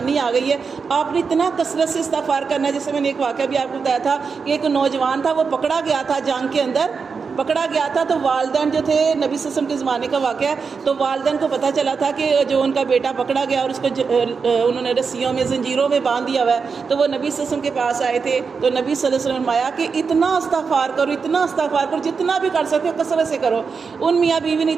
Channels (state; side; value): quieter; left; 5.3 dB